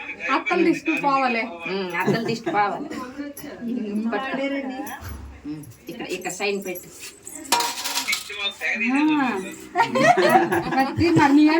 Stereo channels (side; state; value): both; identical; correlation 1.00